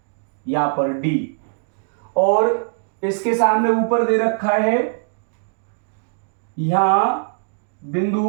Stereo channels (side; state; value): left; silent; digital silence